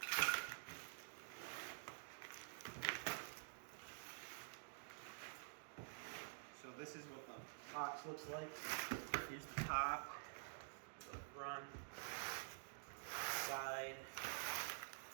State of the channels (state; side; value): silent; left; digital silence